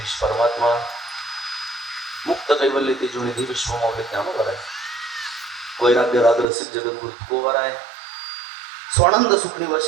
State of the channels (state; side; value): drops out; left; at 6.5 s